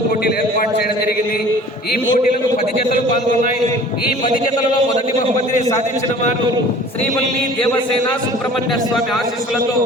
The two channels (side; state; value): both; normal; correlation 0.47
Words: పోటీలు ఏర్పాటు చేయడం జరిగింది. ఈ పోటీలకు 10 జతలు పాల్గొన్నాయి. ఈ 10 జతలలో మొదటి బహుమతిని సాధించిన వారు శ్రీవల్లి దేవసేన సుబ్రహ్మణ్య స్వామి ఆశీస్సులతో